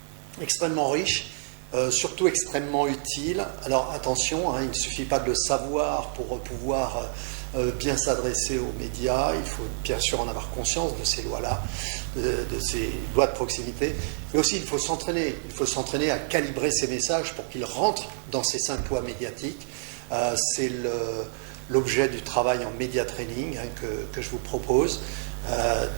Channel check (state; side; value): silent; left; digital silence